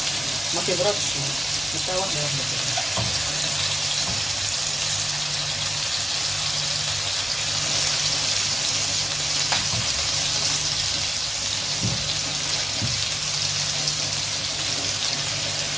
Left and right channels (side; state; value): both; normal; correlation 0.96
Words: ما تبردش، نحطها واحده واحده كده.